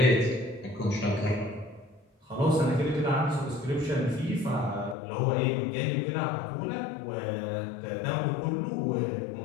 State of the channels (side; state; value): right; drops out; at 5.0 s